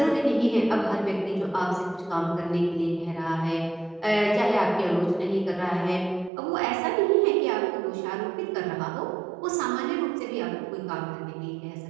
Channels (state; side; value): drops out; left; at 6.3 s